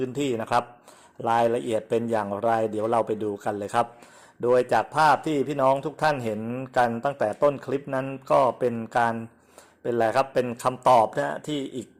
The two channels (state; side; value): identical; both; correlation 1.00